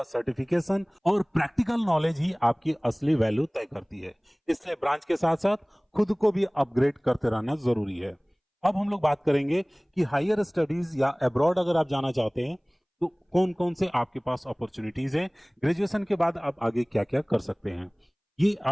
सर्टिफिकेशन और प्रैक्टिकल नॉलेज ही आपकी असली वैल्यू तय करती है। इसलिए ब्रांच के साथ साथ खुद को भी अपग्रेड करते रहना जरूरी है। अब हम लोग बात करेंगे कि हायर स्टडीज या अब्रॉड अगर आप जाना चाहते हैं तो कौन कौन से आपके पास अपॉर्चुनिटीज हैं, ग्रेजुएशन के बाद आप आगे क्या क्या कर सकते हैं। ये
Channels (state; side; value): identical; both; correlation 1.00